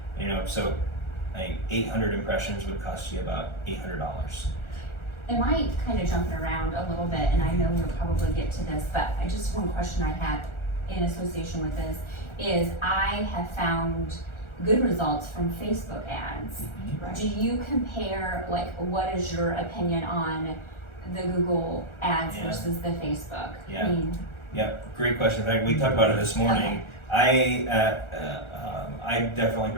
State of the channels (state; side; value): late; right; 1.4 ms